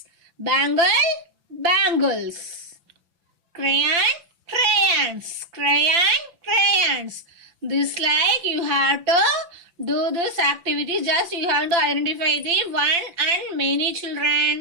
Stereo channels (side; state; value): left; late; 5.9 ms